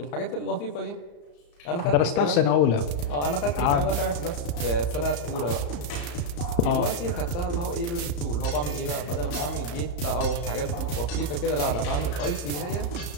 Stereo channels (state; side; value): late; right; 34 ms